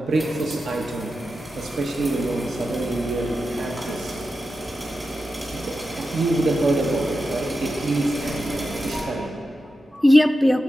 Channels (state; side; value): normal; both; correlation 0.90